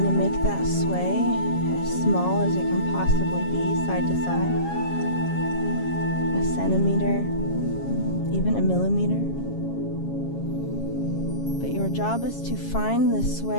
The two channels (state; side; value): late; right; 7.3 ms